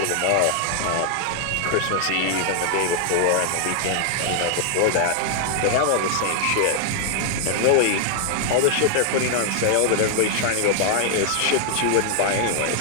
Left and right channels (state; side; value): different; both; correlation 0.00